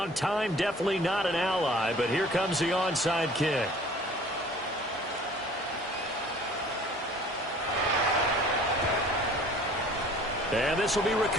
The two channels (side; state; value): both; normal; correlation 0.50